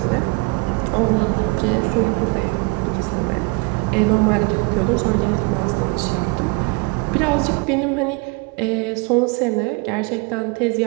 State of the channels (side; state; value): left; quieter; 27.8 dB